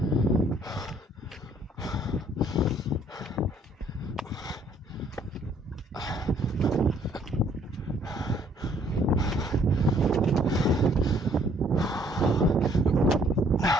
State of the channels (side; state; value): both; normal; correlation 0.62